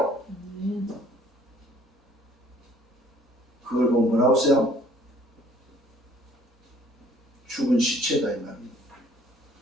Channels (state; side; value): normal; both; correlation 0.58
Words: 그걸 보면 뭐라고 써요? 죽은 시체다 이 말입니다.